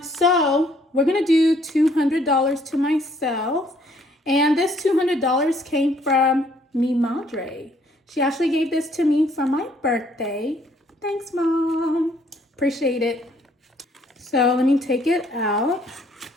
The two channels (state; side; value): normal; both; correlation 0.64